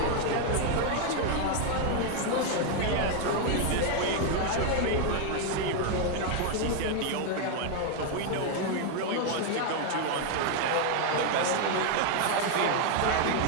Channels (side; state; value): both; different; correlation 0.01